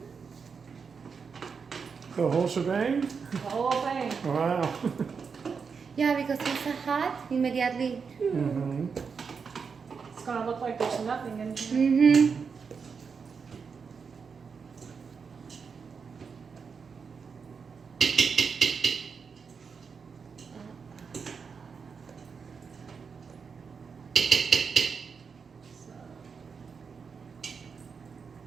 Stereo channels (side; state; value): left; quieter; 5.7 dB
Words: The whole shebang? The whole thing. Wow. Yeah, because it's hot immediately. Mm-hmm. It's going to look like there's nothing in here. Mm-hmm.